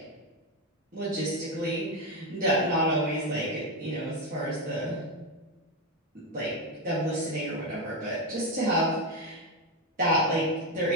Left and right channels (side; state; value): both; normal; correlation 0.09